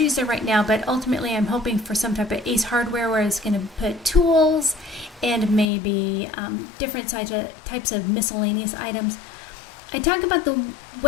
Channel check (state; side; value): drops out; right; at 5.7 s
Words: there right now, but ultimately I'm hoping for some type of Ace Hardware where it's going to put tools and maybe different types of miscellaneous items. I talked about the